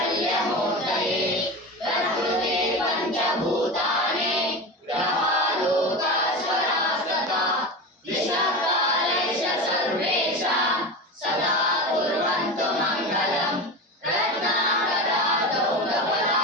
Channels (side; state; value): both; normal; correlation 0.25